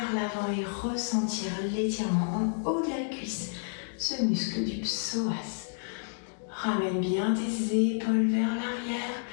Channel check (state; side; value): silent; right; digital silence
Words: l'avant et ressentir l'étirement en haut de la cuisse, ce muscle du psoas. Ramène bien tes épaules vers l'arrière